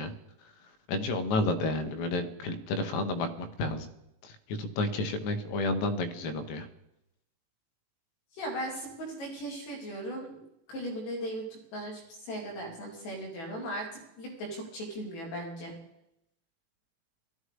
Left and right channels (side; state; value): right; late; 18 ms